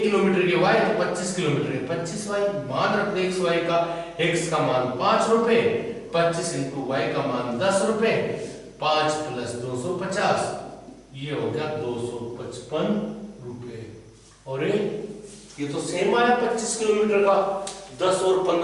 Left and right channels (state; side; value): identical; both; correlation 1.00